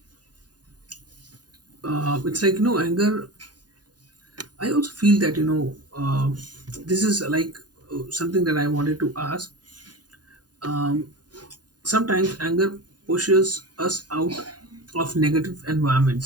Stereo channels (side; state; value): left; late; 0.69 ms